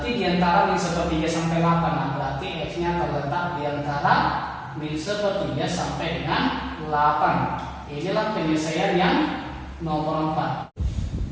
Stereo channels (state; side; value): identical; both; correlation 1.00